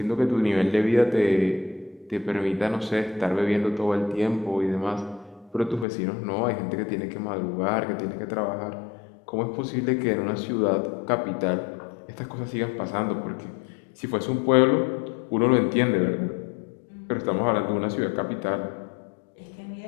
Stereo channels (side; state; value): right; drops out; at 5.9 s